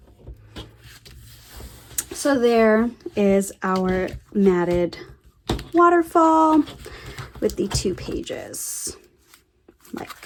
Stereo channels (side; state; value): both; identical; correlation 1.00